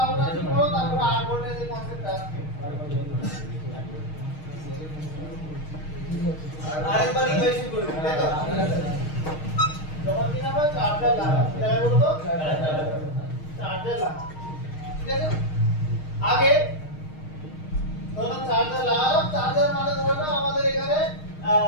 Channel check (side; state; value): right; late; 6.4 ms